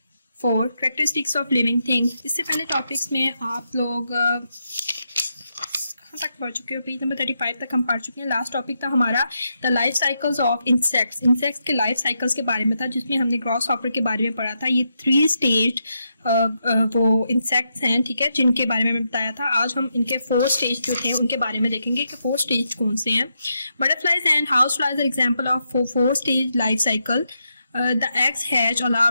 4, characteristics of living things. इससे पहले topics में आप लोग कहाँ तक पढ़ चुके हो? पेज नंबर 35 तक हम पढ़ चुके हैं. लास्ट टॉपिक था हमारा the life cycles of insects. Insects के लाइफ साइकिल्स के बारे में था, जिसमें हमने ग्रॉस हॉपर के बारे में पढ़ा था. ये 3 स्टेज वो इंसेक्ट्स हैं, ठीक है, जिनके बारे में मैं बताया था. आज हम इनके 4 स्टेज जो थे उनके बारे में देखेंगे कि 4 स्टेज कौन से हैं. Butterflies and house flies are example of 4 stage life cycle. The eggs hatch, a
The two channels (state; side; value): inverted; both; correlation -0.83